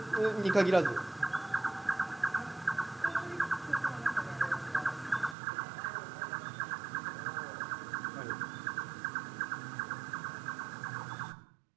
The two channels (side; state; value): left; drops out; at 5.4 s